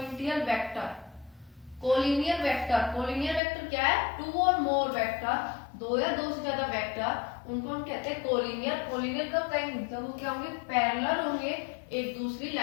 vector, collinear vector. Collinear vector क्या है, टू और मोर वेक्टर, दो या दो से ज्यादा वेक्टर, उनको हम कहते हैं कोलिनियर। कोलिनियर कब कहेंगे, जब वो क्या होंगे, पैरेलल होंगे एक दूसरी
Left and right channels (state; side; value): drops out; right; at 3.4 s